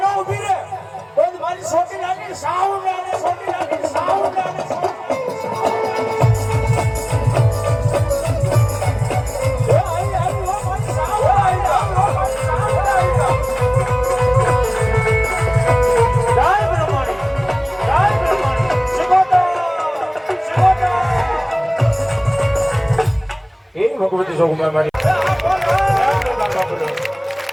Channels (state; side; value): identical; both; correlation 1.00